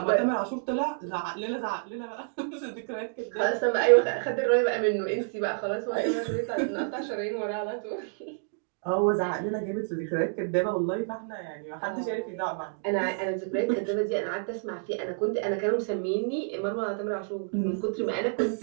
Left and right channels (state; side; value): silent; left; digital silence